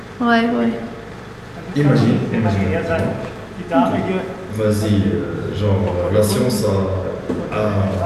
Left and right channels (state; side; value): identical; both; correlation 1.00